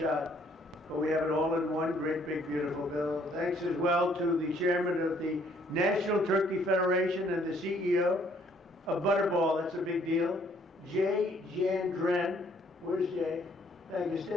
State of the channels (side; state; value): both; normal; correlation 0.64